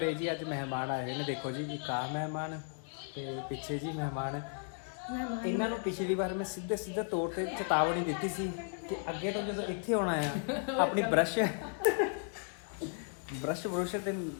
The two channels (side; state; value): right; silent; 54 dB below the other